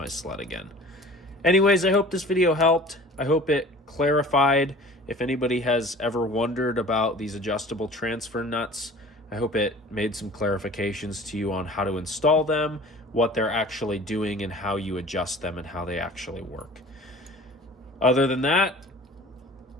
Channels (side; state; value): both; normal; correlation 0.44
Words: sled again. Anyways, I hope this video helped. I hope it clarified if anybody has ever wondered about these adjustable transfer nuts. I hope it made some clarifications to you on how to install them, what they're actually doing, and how you adjust them and how they actually work. Other than that,